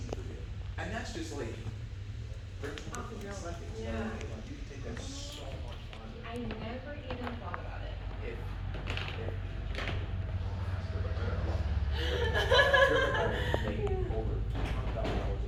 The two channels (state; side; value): identical; both; correlation 1.00